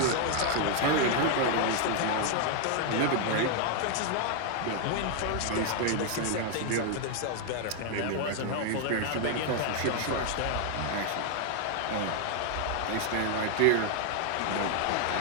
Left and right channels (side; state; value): both; different; correlation 0.00